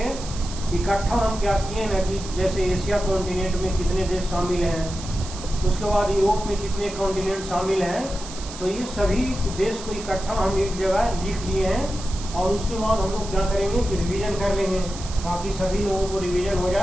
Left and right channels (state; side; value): noise; right; hiss, 13 dB below the sound